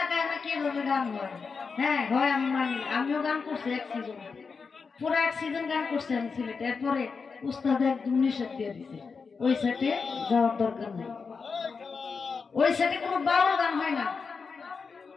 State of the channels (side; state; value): right; quieter; 5.1 dB